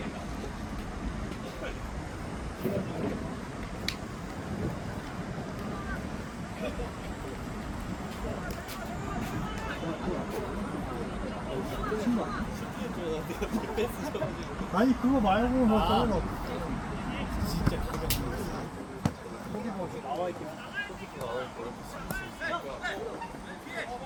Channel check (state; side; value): identical; both; correlation 1.00